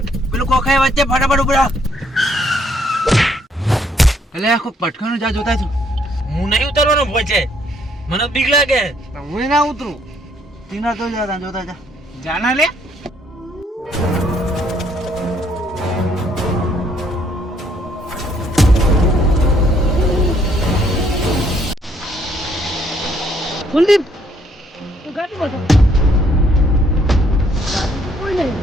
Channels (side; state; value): both; normal; correlation 0.68